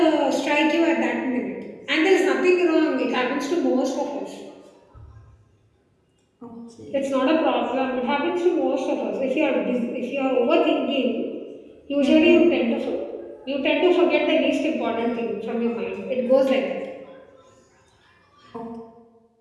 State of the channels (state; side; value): identical; both; correlation 1.00